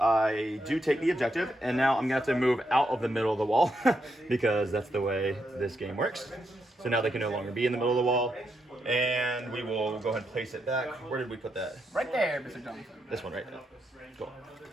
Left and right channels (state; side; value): normal; both; correlation 0.81